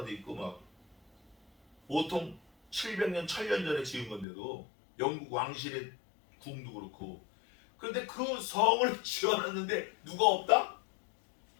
있고 막 보통 700년, 1000년 전에 지은 건데도 영국 왕실의 궁도 그렇고. 그런데 그 성을 지어놨는데 누가 없다?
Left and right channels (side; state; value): right; drops out; at 4.2 s